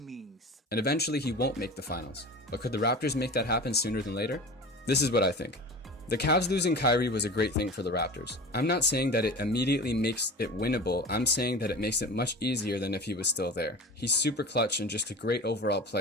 And eventually he won't make the finals. But could the Raptors make that happen sooner than later? This is what I think. The Cavs losing Kyrie was a great thing for the Raptors. I'm not saying that it immediately makes it winnable, I'm saying that it makes it much easier than if he was still there. He's super clutch and just a great overall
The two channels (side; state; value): both; normal; correlation 0.34